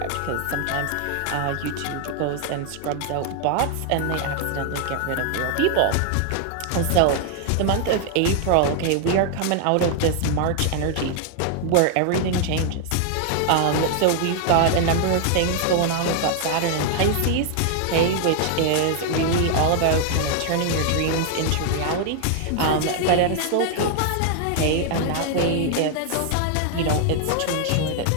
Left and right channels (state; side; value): different; both; correlation 0.00